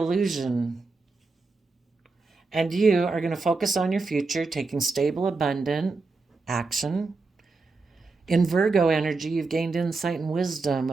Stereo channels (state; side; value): quieter; left; 3.9 dB